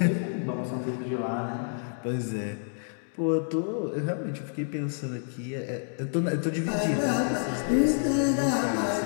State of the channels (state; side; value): silent; right; digital silence